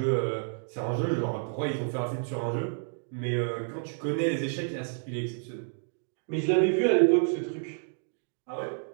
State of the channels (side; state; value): left; silent; digital silence